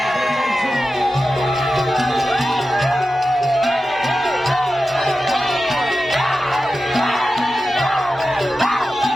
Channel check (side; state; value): both; normal; correlation 0.93